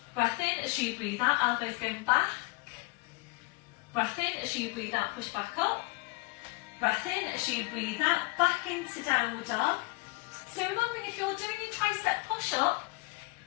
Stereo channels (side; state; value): right; quieter; 24.7 dB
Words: Breath in as you breathe out, elbows going back. Breath in as you breathe out, push back up. Breath in as you breathe out, back into downward dog. So remembering, if you're doing your tricep push-up,